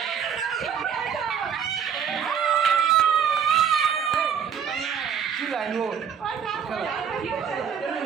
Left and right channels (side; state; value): left; quieter; 7.6 dB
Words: কি লাইন ও